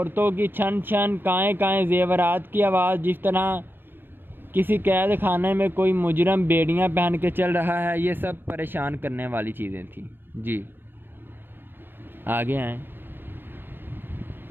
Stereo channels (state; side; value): late; left; 0.099 ms